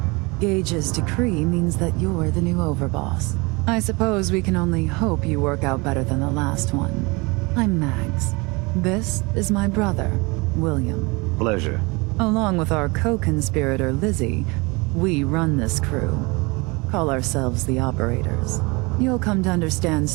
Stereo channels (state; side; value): quieter; left; 26.5 dB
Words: Gage's decree means that you're the new overboss. I suppose we can only hope you work out better than the last one. I'm Mags. This is my brother, William. Pleasure. Along with our co-conspirator, Lizzie, we run this crew. Call ourselves the Operators. You'll come to understand